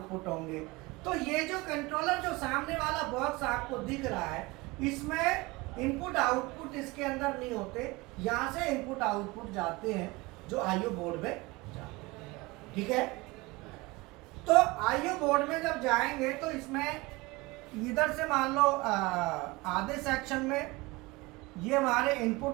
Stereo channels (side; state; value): left; quieter; 22.7 dB